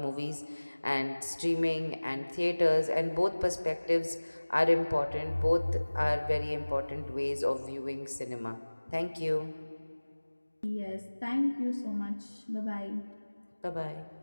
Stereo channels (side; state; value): both; inverted; correlation -1.00